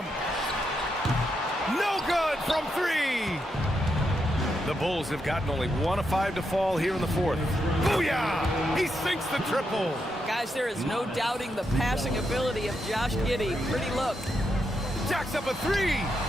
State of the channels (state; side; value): normal; both; correlation 0.82